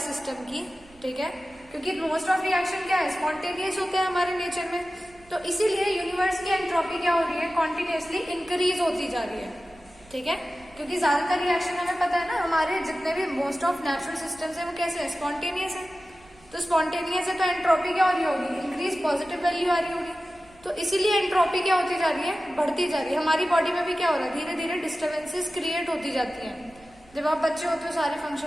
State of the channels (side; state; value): right; noise; rumble, 27 dB below the sound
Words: सिस्टम की, ठीक है, क्योंकि मोस्ट ऑफ रिएक्शन क्या है, स्पॉन्टेनियस होते हैं हमारे नेचर में, तो इसीलिए यूनिवर्स की एंट्रोपी क्या हो रही है, कॉन्टिन्यूसली इंक्रीज होती जा रही है, ठीक है। क्योंकि ज्यादातर रिएक्शन हमें पता है ना, हमारे जितने भी मोस्ट ऑफ नेचुरल सिस्टम्स है वो कैसे है, स्पॉन्टेनियस है। तो स्पॉन्टेनियस है तो एंट्रोपी क्या हो रही होगी, इंक्रीज, पॉजिटिव वैल्यू आ रही होगी। तो इसीलिए एंट्रोपी क्या होती जा रही है, बढ़ती जा रही है। हमारी बॉडी में भी क्या हो रहा है, धीरे धीरे डिस्टर्बेंसेस क्रिएट होती जाती हैं। जब आप बच्चे होते हो सारे